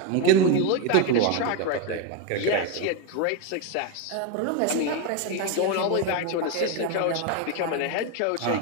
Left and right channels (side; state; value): both; different; correlation 0.03